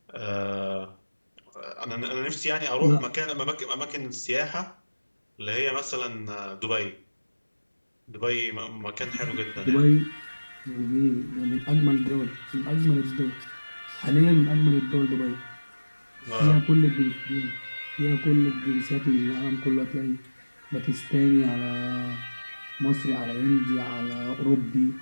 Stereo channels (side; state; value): both; inverted; correlation -1.00